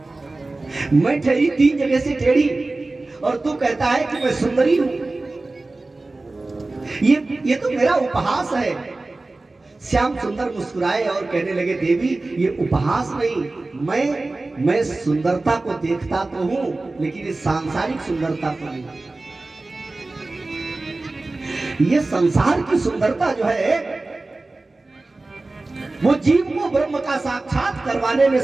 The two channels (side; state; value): left; quieter; 3.2 dB